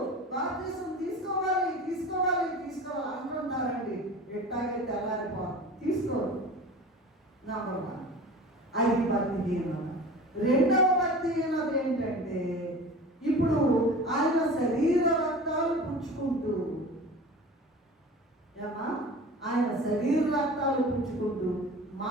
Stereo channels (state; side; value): normal; both; correlation 0.38